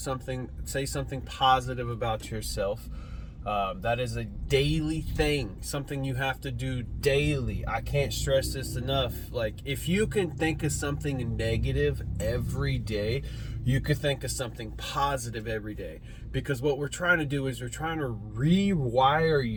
Say something positive about yourself. That is a daily thing, something you have to do daily. I can't stress this enough. Like, if you can think of something negative every day, you could think of something positive every day. Because what we're trying to do is we're trying to rewire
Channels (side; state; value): both; identical; correlation 1.00